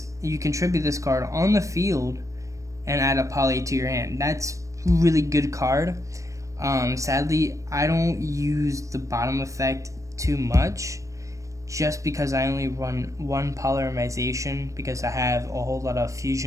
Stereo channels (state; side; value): late; left; 0.15 ms